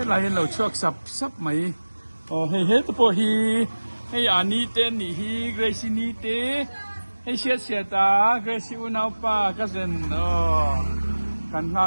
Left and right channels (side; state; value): both; inverted; correlation -1.00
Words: lai hen lo chuak sap mai. Hey hey to hi hey ani ten ni hi Grace ni te hey sia ta Grace unau pa cousin kan